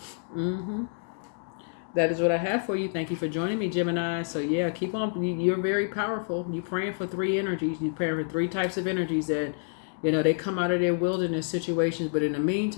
That is what I have for you. Thank you for joining me, Gemini. So yeah, keep on. You're very powerful. You're praying for 3 energies. You're praying for 3 types of energies that, they come out of their wilderness situations. But in the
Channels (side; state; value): right; silent; digital silence